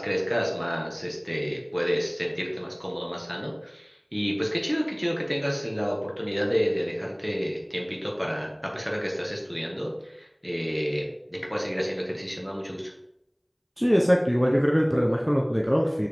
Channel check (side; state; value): both; identical; correlation 1.00